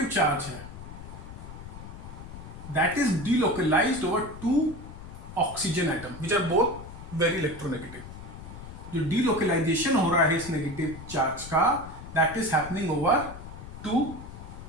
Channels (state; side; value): noise; left; rumble, 13 dB below the sound